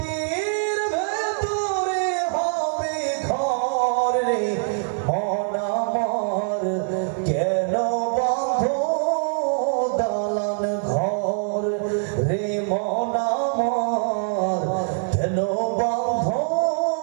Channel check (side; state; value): left; silent; digital silence